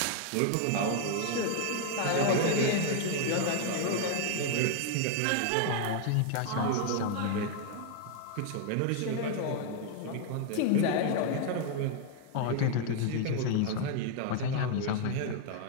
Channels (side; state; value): both; different; correlation 0.00